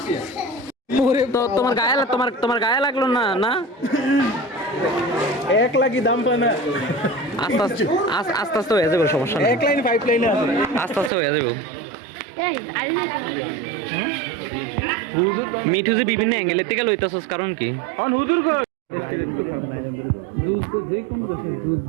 তো তোমার গায়ে লাগলো না না এক লাখই দাম পায় না আস্তে আস্তে হয়ে যাবে সমস্যা নেই এক লাইন 5 লাইনে আছে আস্তে আস্তে হয়ে যাবে মিঠু যে বিভিন্ন অ্যাঙ্গেলের থেকে লইতেছস কারণ কি হুজুর যুদ্ধ যে কোনো দেশের যুদ্ধ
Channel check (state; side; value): drops out; left; at 11.1 s